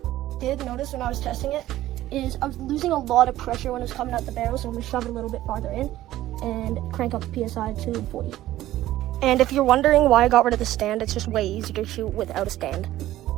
Did notice when I was testing it is I was losing a lot of pressure when it was coming out the barrel, so I'm gonna shove it a little bit farther in and crank up the PSI to 40. And if you're wondering why I got rid of the stand, it's just way easier to shoot without a stand.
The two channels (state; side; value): quieter; left; 14.7 dB